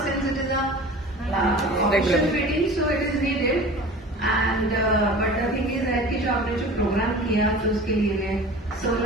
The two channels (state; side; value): normal; both; correlation 0.40